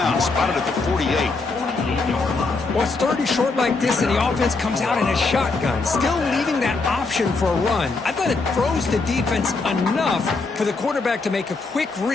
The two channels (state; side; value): quieter; right; 3.9 dB